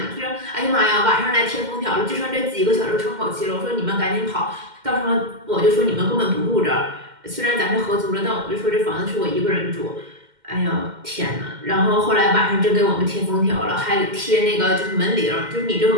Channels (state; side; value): late; left; 2.1 ms